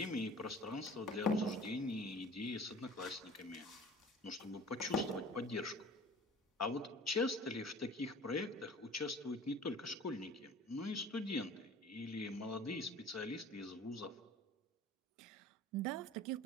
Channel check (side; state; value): both; normal; correlation 0.44